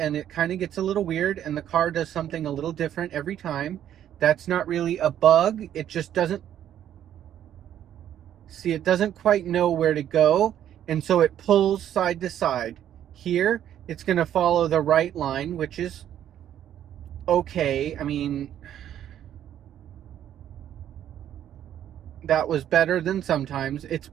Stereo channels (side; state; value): left; quieter; 10.7 dB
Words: it kind of gets a little weird, and the car does something a little different every time. That's not really a bug. It just doesn't see, it doesn't quite know where to go, and so it pulls side to side. Here, it's going to follow the right line, which is okay. I mean, that was better than sometimes. It's